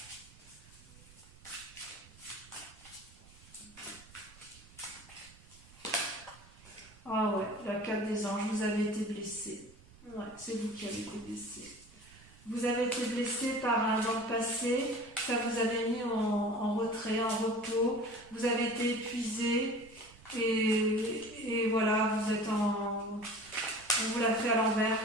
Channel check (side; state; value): right; noise; rumble, 23 dB below the sound